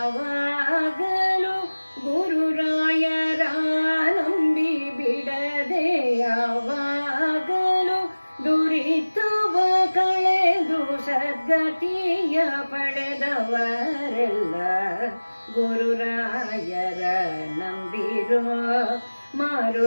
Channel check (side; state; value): both; inverted; correlation -1.00